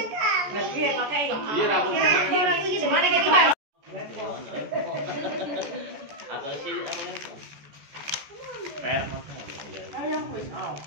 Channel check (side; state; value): left; late; 14 ms